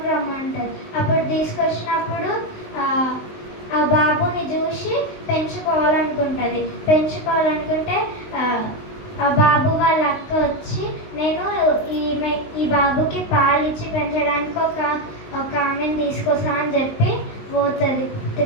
రమ్మంటారు. అప్పుడు తీసుకొచ్చినప్పుడు ఆ బాబుని చూసి పెంచుకోవాలనుకుంటే ఆ బాబు వాళ్ళ అక్క వచ్చి నేను ఈ బాబుకి పాలు ఇచ్చి పెంచడానికి ఒక ఆమెను తీసుకొస్తా అని చెప్పి పోతుంది.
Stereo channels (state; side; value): late; right; 19 ms